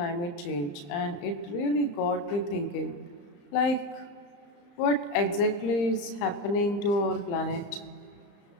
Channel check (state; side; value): late; right; 34 ms